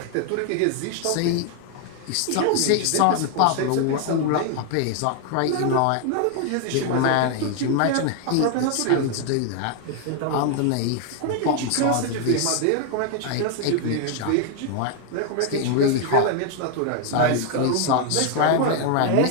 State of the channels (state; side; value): different; both; correlation 0.00